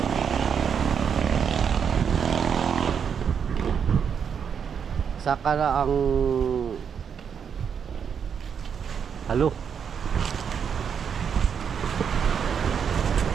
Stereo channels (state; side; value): quieter; left; 7.2 dB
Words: Saka na ang halo.